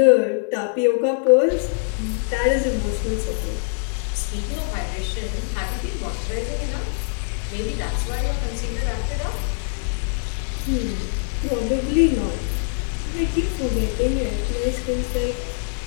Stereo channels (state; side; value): silent; right; digital silence